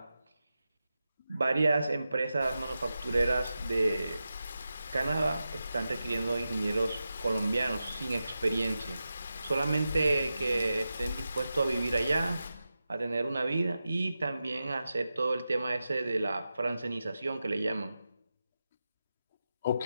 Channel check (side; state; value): both; inverted; correlation -0.91